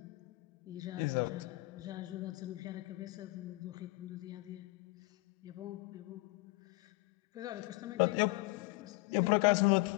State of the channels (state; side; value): quieter; right; 23.1 dB